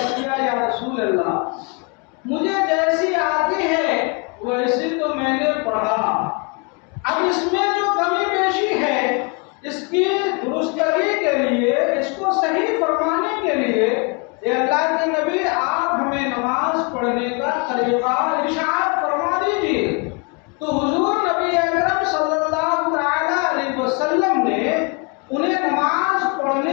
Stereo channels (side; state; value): right; quieter; 33.5 dB